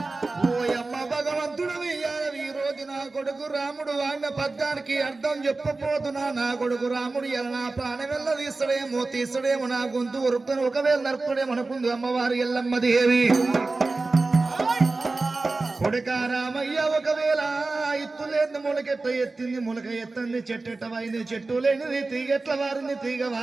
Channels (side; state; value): left; quieter; 3.5 dB